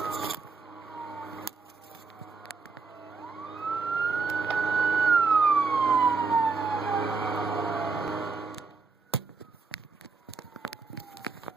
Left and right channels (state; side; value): quieter; left; 4.6 dB